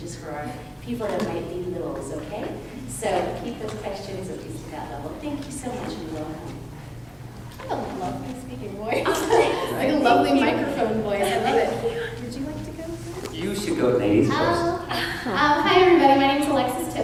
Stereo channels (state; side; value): identical; both; correlation 1.00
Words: for our people that might be littles, okay? So keep those questions at least at that level. Thank you so much and welcome. I love my speaking voice. Like a lovely microphone voice. I love it. Would you like to go first? You should go ladies first. Hi everybody, my name is Alexis